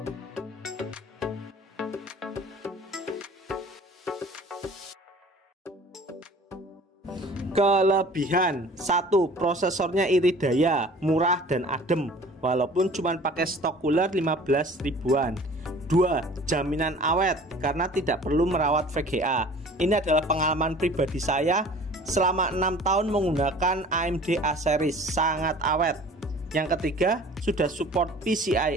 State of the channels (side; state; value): both; normal; correlation 0.47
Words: Kelebihan: 1. Prosesornya irit daya, murah dan adem walaupun cuma pakai stok cooler 15 ribuan. 2. Jaminan awet karena tidak perlu merawat VGA. Ini adalah pengalaman pribadi saya selama 6 tahun menggunakan AMD A series, sangat awet. Yang ketiga, sudah support